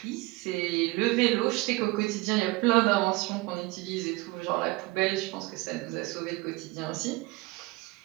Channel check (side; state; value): left; quieter; 22.0 dB